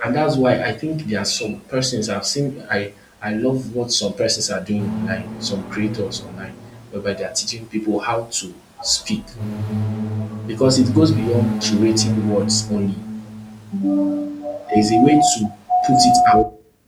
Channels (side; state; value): both; identical; correlation 1.00